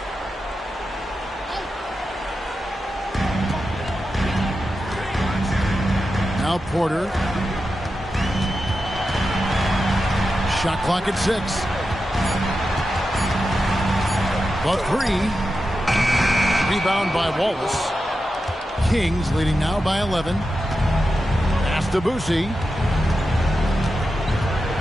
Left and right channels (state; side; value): normal; both; correlation 0.90